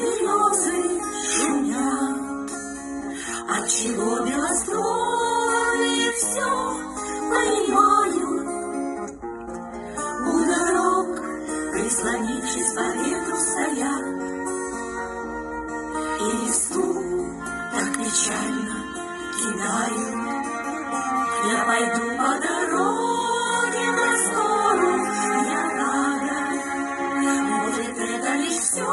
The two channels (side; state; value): both; identical; correlation 1.00